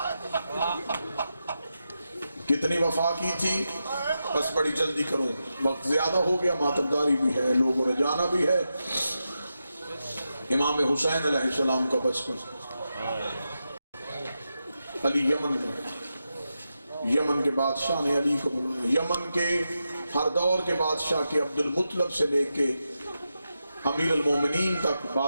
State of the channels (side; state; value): both; inverted; correlation -0.88